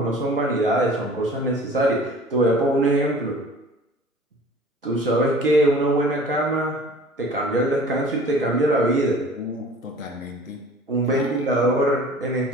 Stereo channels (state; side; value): normal; both; correlation 0.46